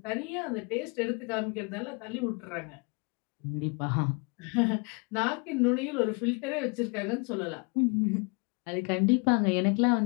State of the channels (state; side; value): quieter; right; 32.8 dB